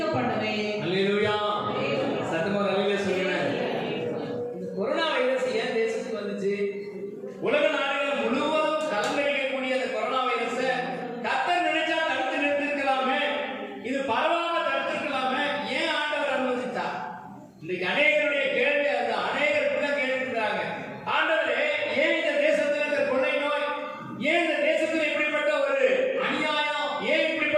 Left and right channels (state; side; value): identical; both; correlation 1.00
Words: பண்ணுவேன். அல்லேலூயா. சத்தமா அல்லேலூயா சொல்லுங்க. இந்த கொரோனா வைரஸ் ஏன் தேசத்துக்கு வந்துச்சு? உலக நாடுகள் முழுவதும் கலங்கடிக்கக்கூடிய அந்த கொரோனா வைரஸை கர்த்தர் நினைச்சா தடுத்து நிறுத்திருக்கலாமே, இது பரவாம தடுத்திருக்கலாமே, ஏன் ஆண்டவர் அனுமதித்தார்? இன்னைக்கு அநேகருடைய கேள்வி அது. அநேகர் இப்படிதான் கேட்டுக்கிறாங்க, ஆண்டவரே ஏன் இந்த தேசத்துல இந்த கொள்ளை நோய், ஏன் இந்த தேசத்துல இப்படிப்பட்ட ஒரு அநியாயம், ஏன்